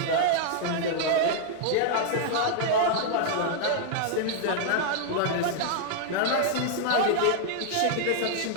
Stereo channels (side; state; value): both; different; correlation -0.01